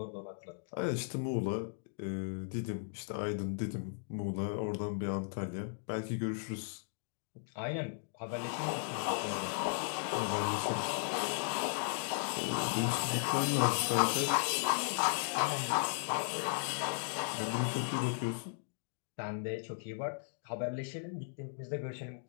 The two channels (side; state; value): right; silent; digital silence